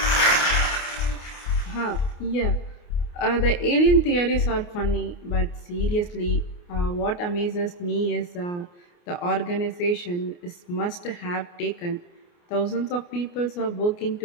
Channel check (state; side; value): late; right; 28 ms